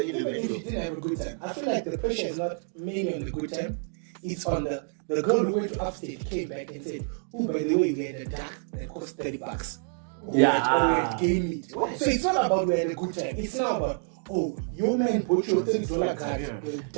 if you individual. didn't have a good time, I feel like the pressure is not mainly on the good time. It's on the girl who went to upstate came back and said, oh, by the way, we had a duck that cost $30. Or we had game meat. So it's not about we had a good time. It's not about, oh, your man bought your $30 card with a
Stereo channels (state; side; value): silent; left; 59 dB below the other